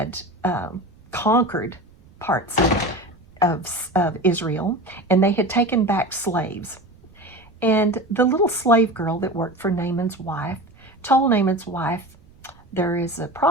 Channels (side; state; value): right; noise; rumble, 27 dB below the sound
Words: conquered parts of Israel, and they had taken back slaves. And the little slave girl that worked for Naaman's wife told Naaman's wife, there is a